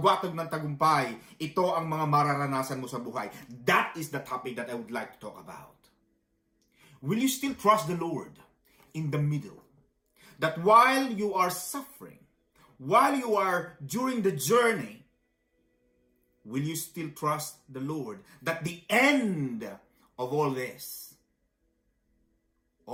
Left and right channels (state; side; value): identical; both; correlation 1.00